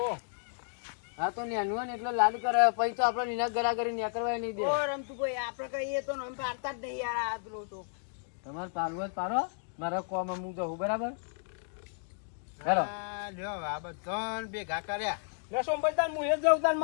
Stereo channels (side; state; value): right; silent; digital silence